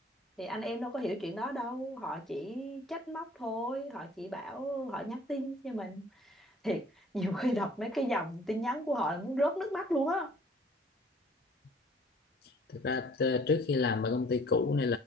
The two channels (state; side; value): normal; both; correlation 0.54